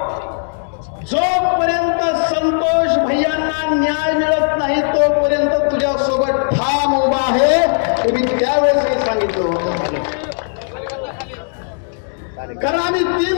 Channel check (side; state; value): right; silent; digital silence